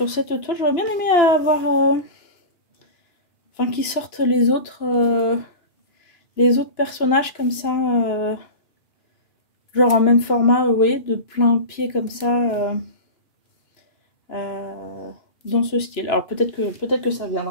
J'aurais bien aimé avoir... Enfin qu'ils sortent les autres personnages comme ça. Genre en même format, vous voyez, de plein pied comme ça. Dans ce style. Alors peut-être que ça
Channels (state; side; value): late; right; 2.9 ms